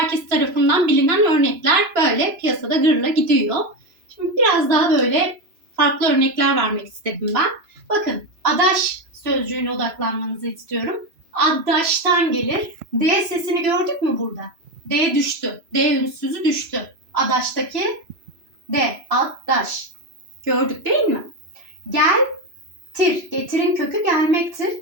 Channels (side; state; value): left; late; 3.0 ms